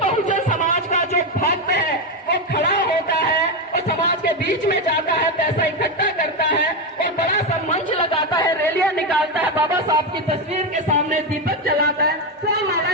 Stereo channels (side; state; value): both; normal; correlation 0.09